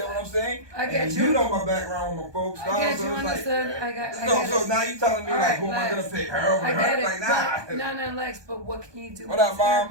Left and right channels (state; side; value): late; left; 1.2 ms